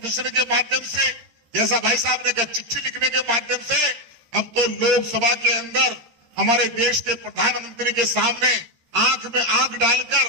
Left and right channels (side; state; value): left; late; 13 ms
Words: के माध्यम से, जैसा भाई साहब ने कहा, चिट्ठी लिखने के माध्यम से, अब तो लोकसभा के अंदर हमारे देश के प्रधानमंत्री के सामने आंख में आंख डालकर,